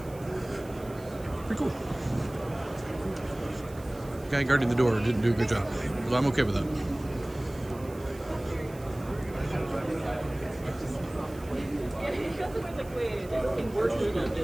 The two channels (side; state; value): right; noise; hiss, 22 dB below the sound